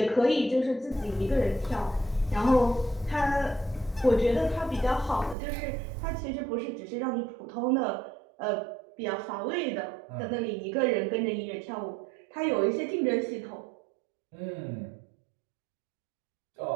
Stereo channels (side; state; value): left; drops out; at 5.4 s